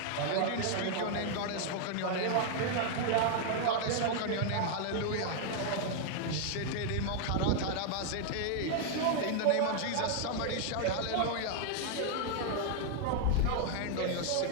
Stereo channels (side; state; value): both; different; correlation 0.00